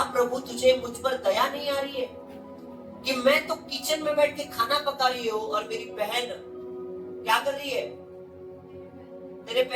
प्रभु तुझे मुझ पर दया नहीं आ रही है कि मैं तो किचन में बैठ के खाना पका रही हूँ और मेरी बहन क्या कर रही है? तेरे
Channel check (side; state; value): both; identical; correlation 1.00